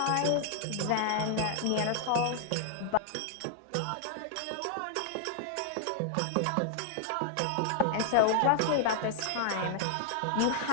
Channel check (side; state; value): both; different; correlation 0.00